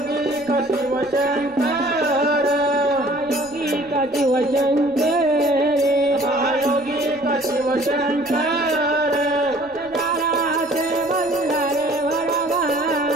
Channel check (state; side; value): noise; left; rumble, 26 dB below the sound